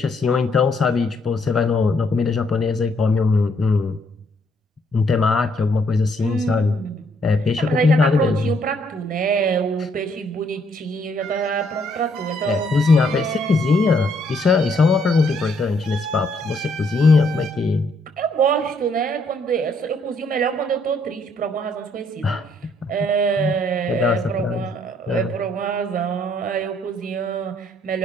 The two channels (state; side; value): normal; both; correlation 0.69